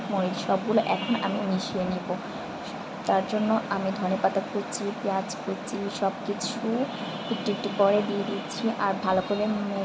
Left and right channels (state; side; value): identical; both; correlation 1.00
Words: মরিচ সবগুলো এখন আমি মিশিয়ে নিব। তার জন্য আমি ধনেপাতা কুচি, পেঁয়াজ কুচি সব কিছু একটু একটু করে দিয়ে দিচ্ছি আর ভালো করে